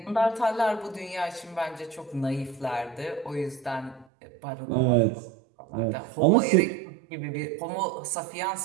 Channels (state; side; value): drops out; left; at 4.0 s